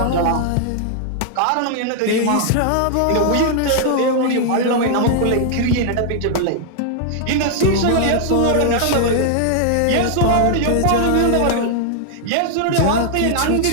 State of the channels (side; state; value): both; different; correlation 0.00